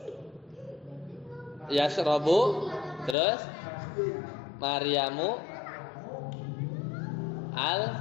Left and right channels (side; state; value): right; drops out; at 3.2 s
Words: Yashrabu. Terus Maryamu